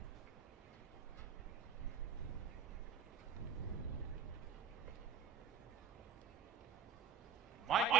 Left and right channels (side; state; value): left; quieter; 6.9 dB